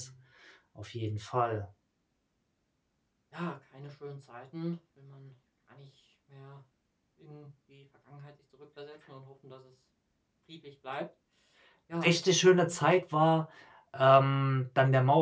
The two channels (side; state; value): both; identical; correlation 1.00